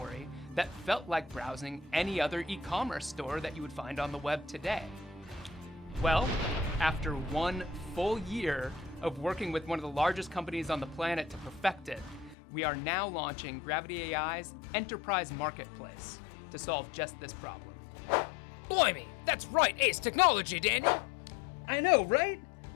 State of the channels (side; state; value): right; drops out; at 12.4 s